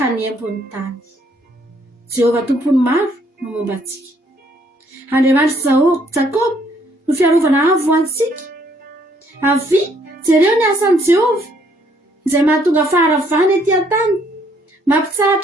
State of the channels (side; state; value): both; normal; correlation 0.66